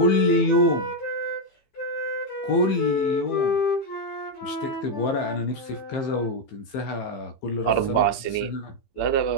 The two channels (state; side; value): late; right; 15 ms